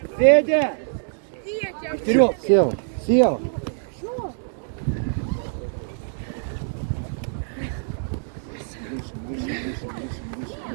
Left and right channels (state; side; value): silent; left; 62 dB below the other